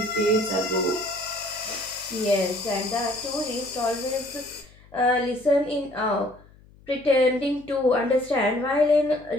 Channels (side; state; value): left; noise; hum, 26 dB below the sound